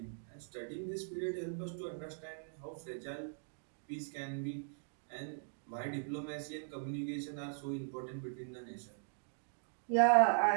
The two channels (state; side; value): silent; left; digital silence